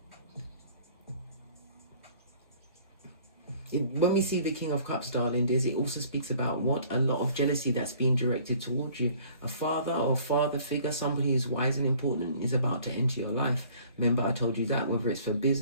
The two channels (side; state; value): both; inverted; correlation -0.54